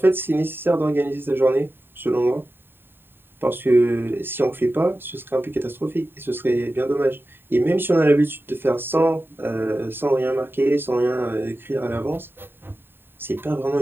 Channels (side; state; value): left; late; 0.10 ms